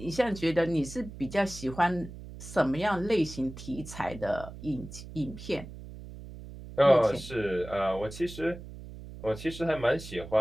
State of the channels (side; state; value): right; noise; hum, 13 dB below the sound